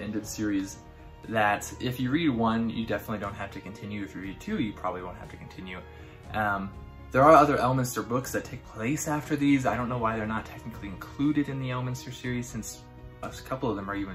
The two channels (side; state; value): both; identical; correlation 1.00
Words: series that if you read one, you definitely don't have to continue. If you read two, you probably won't have to continue. There are other Elminster books that take place after these. I don't know why they're not technically included in the Elminster series, since a couple of them are